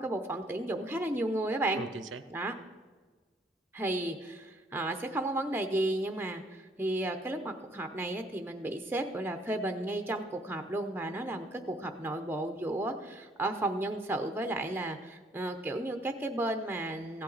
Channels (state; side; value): normal; both; correlation 0.65